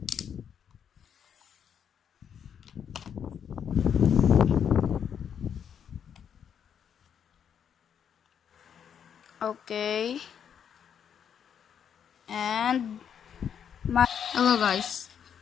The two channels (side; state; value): right; quieter; 8.1 dB